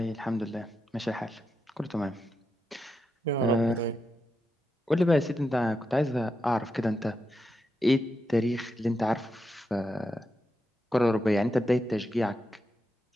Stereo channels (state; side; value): normal; both; correlation 0.86